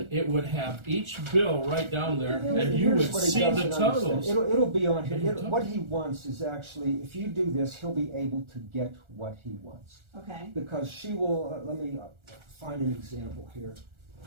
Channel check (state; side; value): late; left; 1.4 ms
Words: it would have each bill right down there, and you Here's would what he see the doesn't totals. understand. It'll be on here. It'll What he wants is actually, if you do this, he'll be able to get what he wants. Okay. Because she will, let me find an example here.